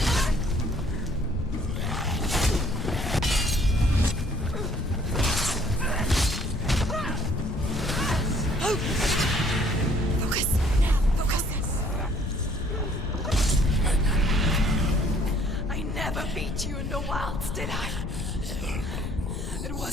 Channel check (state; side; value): noise; left; rumble, 5 dB below the sound